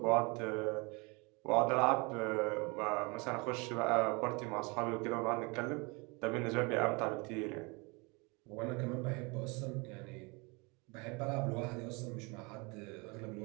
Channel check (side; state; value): left; quieter; 28.7 dB